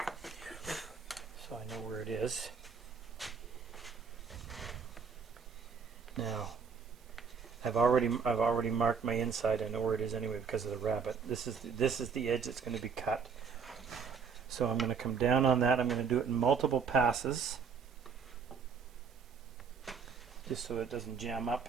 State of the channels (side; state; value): left; quieter; 6.0 dB